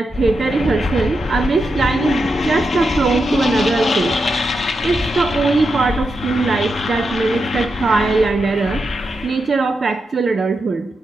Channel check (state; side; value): normal; both; correlation 0.86